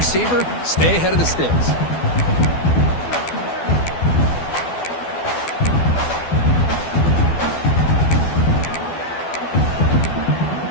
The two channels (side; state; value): right; late; 12 ms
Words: stay ahead of the sticks.